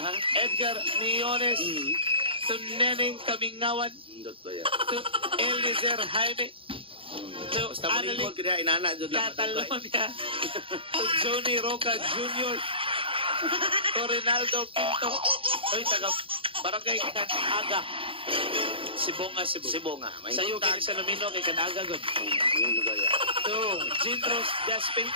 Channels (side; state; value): left; late; 0.26 ms